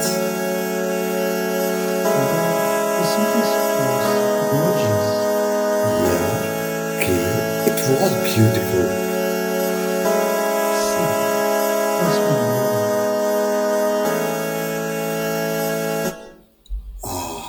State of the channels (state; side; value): identical; both; correlation 1.00